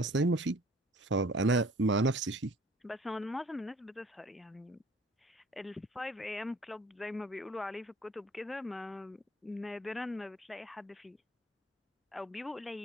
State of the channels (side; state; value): both; normal; correlation 0.52